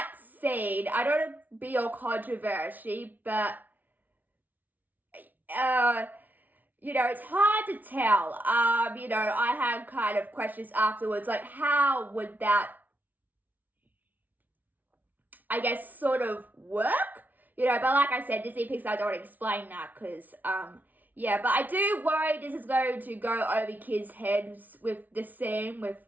scene, I don't want to be all controversy, but it's hard to tell. I had kind of questions afterwards, like how would that, I guess, sort of work? But like I said, Disney Pixar don't want to explain that because, but I do worry this is going to go over kids' heads with the scene, with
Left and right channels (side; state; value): left; late; 0.080 ms